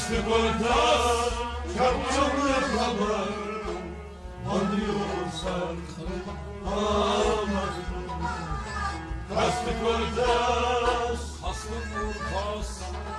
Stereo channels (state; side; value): identical; both; correlation 1.00